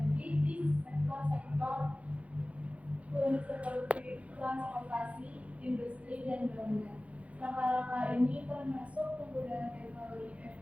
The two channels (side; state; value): left; late; 0.065 ms